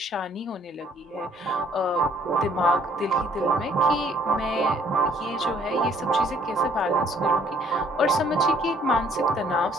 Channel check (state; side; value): normal; both; correlation 0.61